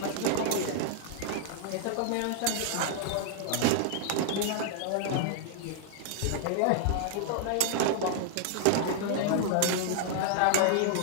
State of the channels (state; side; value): different; both; correlation -0.01